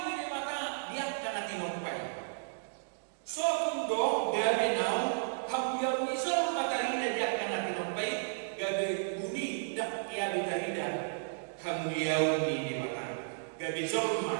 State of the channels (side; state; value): left; silent; digital silence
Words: ini mata dia karena tinoppai. So kundo gabe nau hamuliau isol matarina dia karena tinoppai gabe buni dak kia bitarida hamuliau ini mata gabe